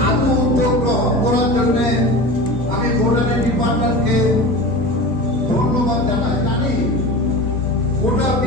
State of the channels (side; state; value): both; normal; correlation 0.31